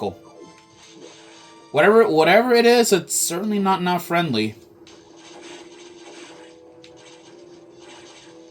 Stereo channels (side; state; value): both; identical; correlation 1.00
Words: Whatever it is, it's certainly not friendly.